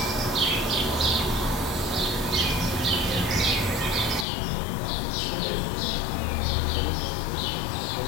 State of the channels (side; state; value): right; drops out; at 4.2 s